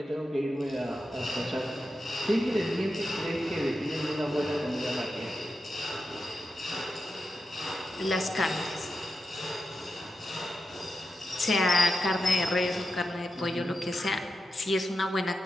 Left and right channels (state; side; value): normal; both; correlation 0.89